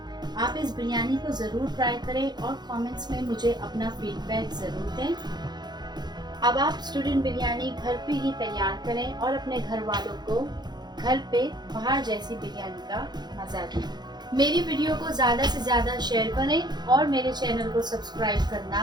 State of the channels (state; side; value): late; left; 0.21 ms